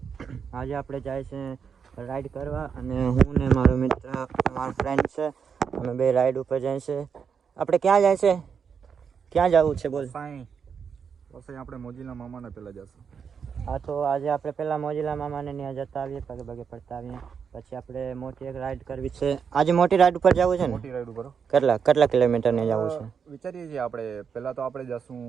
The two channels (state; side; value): quieter; left; 6.7 dB